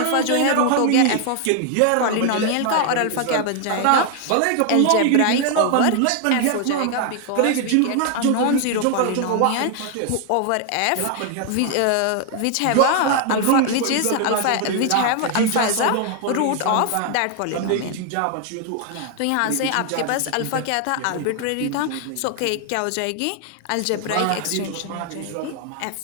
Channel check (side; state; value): both; different; correlation 0.00